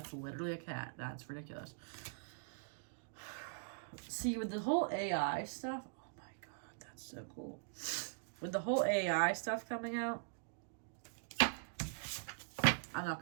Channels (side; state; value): left; silent; digital silence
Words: literally a cat. That's ridiculous. See, with the whole AI stuff, so cool. With the whole AI stuff coming out, I'm not